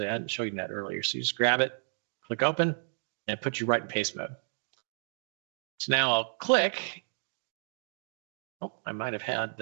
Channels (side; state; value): left; silent; digital silence